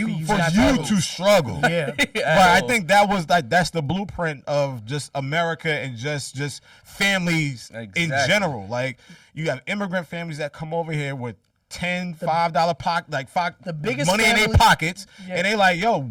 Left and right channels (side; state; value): both; identical; correlation 1.00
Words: to struggle. Yeah. But I think that's the blueprint of just America and just families in general. Like you have immigrant families that come over here with $5 pocket, the biggest money in their pockets, and they like, yo,